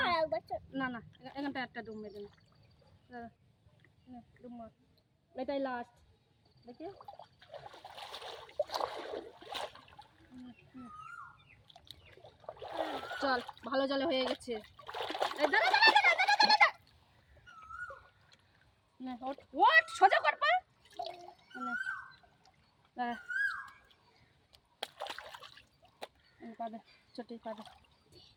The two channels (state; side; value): identical; both; correlation 1.00